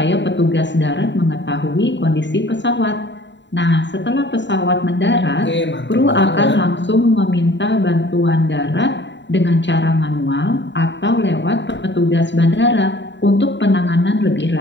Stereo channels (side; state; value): right; late; 0.52 ms